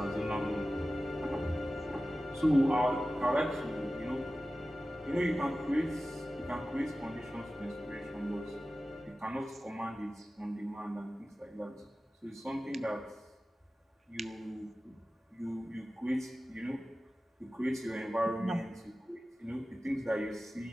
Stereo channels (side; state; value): both; normal; correlation 0.95